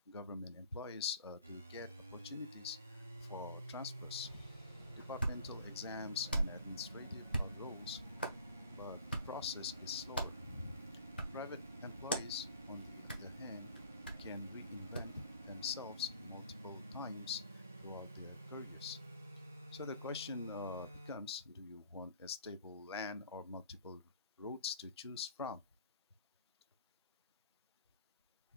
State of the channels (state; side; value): inverted; both; correlation -0.52